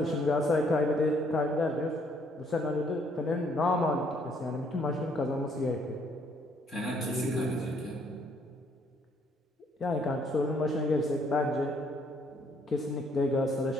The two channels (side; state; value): both; normal; correlation 0.67